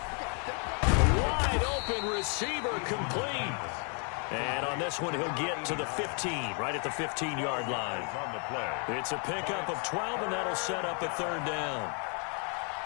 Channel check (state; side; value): quieter; right; 39.2 dB